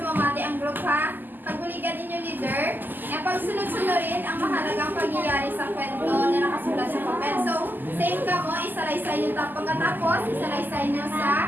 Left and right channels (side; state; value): left; late; 0.089 ms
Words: ang group ha. Pagbuligan inyo leader, na pagsunod-sunurin ang mahalagang pangyayari sa kwento na nakasulat sa papel. So, same ka mo, isalaysay nyo pagkatapos, isalaysay nyo